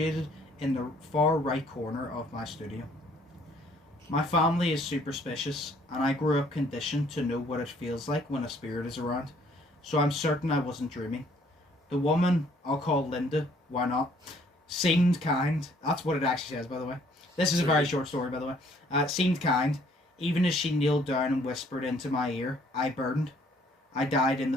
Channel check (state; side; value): normal; both; correlation 0.62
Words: in the far right corner of my studio. My family is superstitious, and I grew up conditioned to know what it feels like when a spirit is around, so I'm certain I wasn't dreaming. The woman, I'll call Linda, why not, seemed kind. That's what it actually says, by the way. This is a very short story, by the way. Seemed kind. Even as she kneeled down and whispered into my ear, I burned. I died in